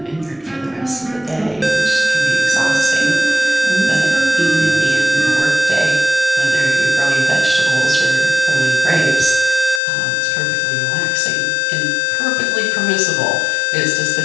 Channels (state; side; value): drops out; right; at 9.8 s